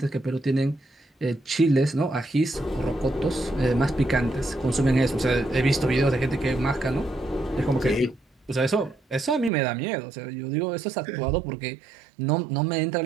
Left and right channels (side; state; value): left; drops out; at 9.5 s